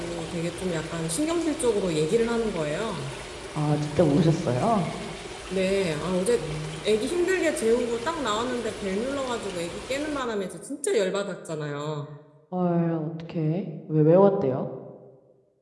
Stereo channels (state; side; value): identical; both; correlation 1.00